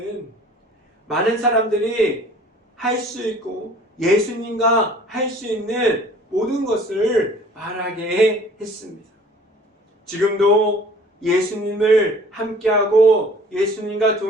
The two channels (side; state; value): both; normal; correlation 0.51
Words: 많은 사람들이 할 수 있고 예수님과 할 수 있는 모든 것을 말하게 했습니다. 지금도 예수님을 함께하고 예수님과